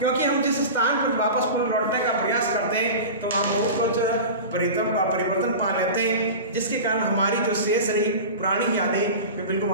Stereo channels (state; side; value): inverted; both; correlation -0.30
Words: हम जिस स्थान पर वापस पुनः लौटने का प्रयास करते हैं तो हम बहुत कुछ परिवर्तन पा लेते हैं, जिसके कारण हमारी जो शेष रही पुरानी यादें वे बिल्कुल